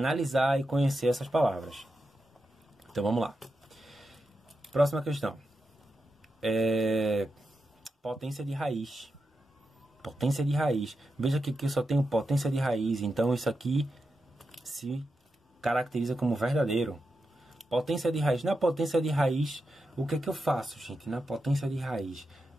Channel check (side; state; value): both; normal; correlation 0.88